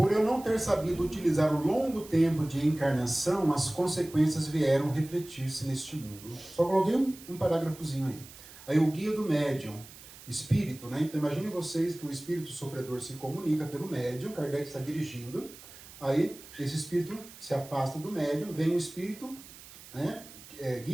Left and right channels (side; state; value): right; noise; hiss, 18 dB below the sound